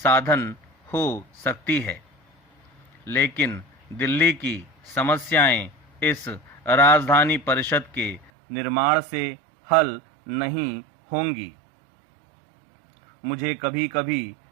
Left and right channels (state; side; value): drops out; left; at 8.3 s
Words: हो सकती है। लेकिन दिल्ली की समस्याएं इस राजधानी परिषद के निर्माण से हल नहीं होंगी। मुझे कभी कभी